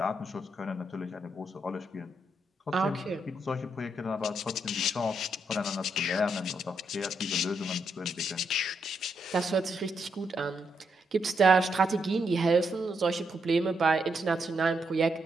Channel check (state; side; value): normal; both; correlation 0.79